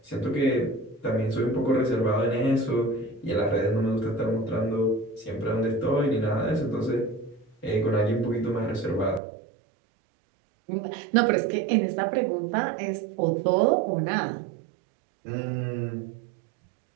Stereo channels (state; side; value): drops out; left; at 9.2 s